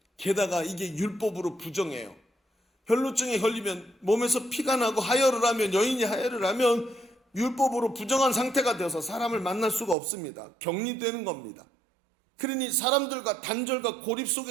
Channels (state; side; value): drops out; left; at 10.0 s